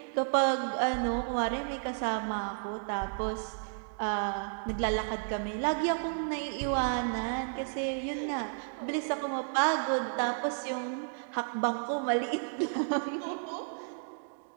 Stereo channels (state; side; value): silent; left; digital silence